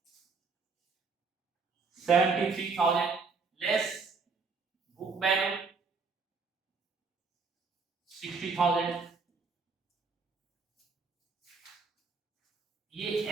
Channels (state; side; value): quieter; left; 4.6 dB